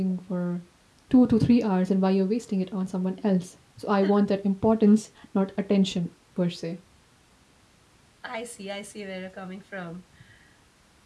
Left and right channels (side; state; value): both; identical; correlation 1.00